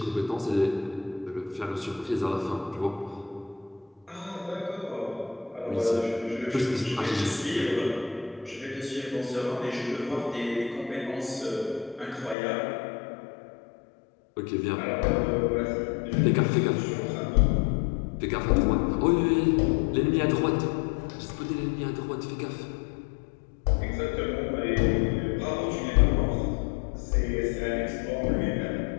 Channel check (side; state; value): right; drops out; at 12.4 s